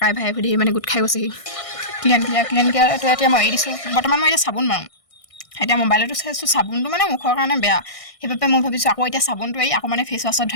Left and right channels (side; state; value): right; late; 1.6 ms